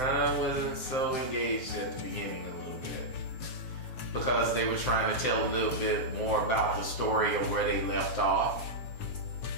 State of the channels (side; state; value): right; late; 7.7 ms